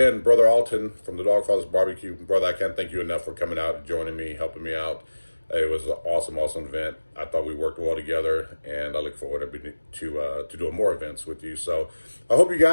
Brother Alton from the Dogfather's Barbecue. Brother, I can't thank you enough for coming out and joining me, helping me out. It was an awesome event. I thought we worked well together, and I look forward to doing more events with you. So I hope you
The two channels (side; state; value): both; inverted; correlation -1.00